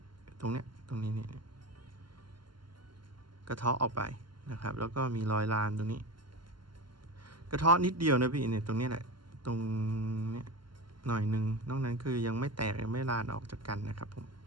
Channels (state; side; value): late; left; 0.72 ms